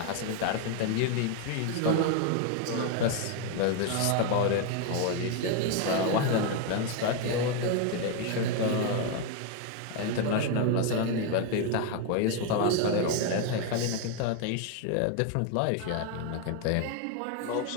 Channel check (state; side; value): different; both; correlation 0.01